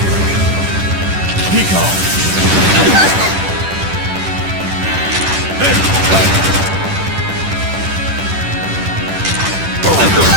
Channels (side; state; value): left; late; 10 ms